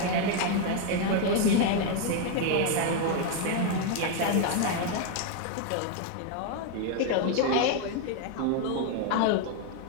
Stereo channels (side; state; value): both; different; correlation 0.01